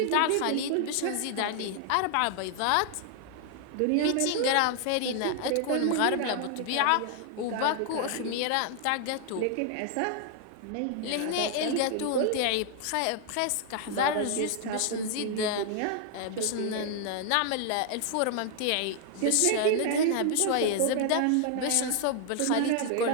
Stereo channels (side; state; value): both; different; correlation 0.00